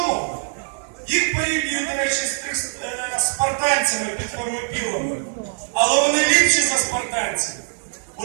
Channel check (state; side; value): silent; left; 55 dB below the other